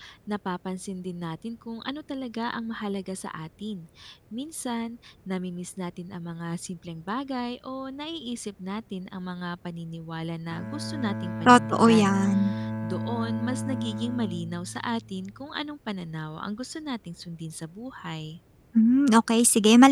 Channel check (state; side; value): identical; both; correlation 1.00